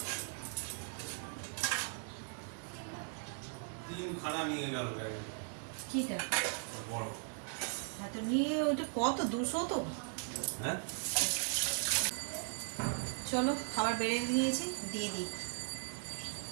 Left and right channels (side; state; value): left; silent; 52 dB below the other